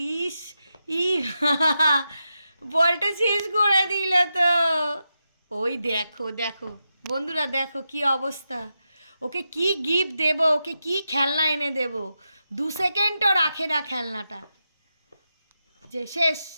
ইস ই বলটা শেষ করে দিল তো। ওই দেখো দেখো বন্ধুরা, দেখো কি অবস্থা। ওকে কি গিফট দেব, ওকে কি খেলনা এনে দেব, 2 সেকেন্ডও রাখে না খেলনাটা। যে শেষ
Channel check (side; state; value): both; inverted; correlation -0.88